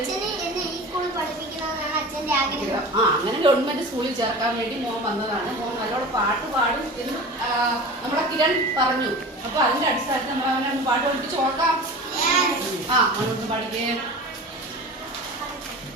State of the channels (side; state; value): both; normal; correlation 0.35